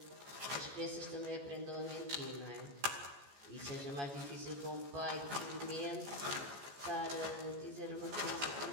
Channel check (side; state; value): left; late; 14 ms